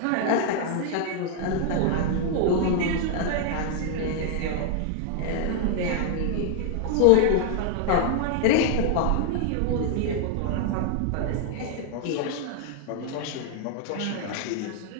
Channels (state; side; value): different; both; correlation 0.00